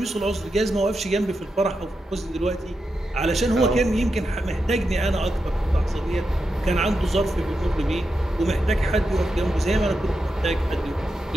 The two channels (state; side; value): normal; both; correlation 0.87